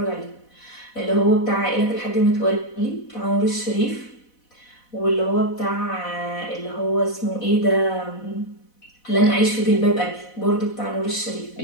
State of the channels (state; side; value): late; right; 4.1 ms